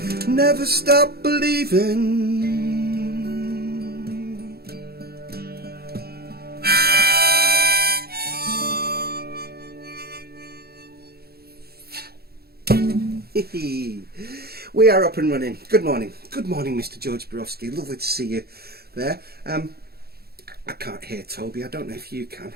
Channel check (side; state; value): left; late; 0.46 ms